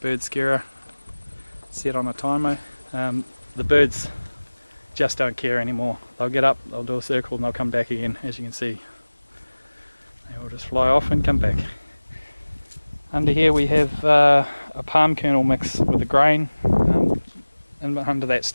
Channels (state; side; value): inverted; both; correlation -1.00